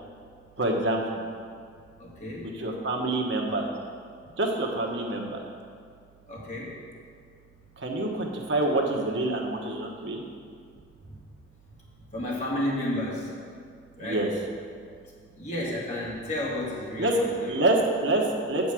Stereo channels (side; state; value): right; noise; hum, 28 dB below the sound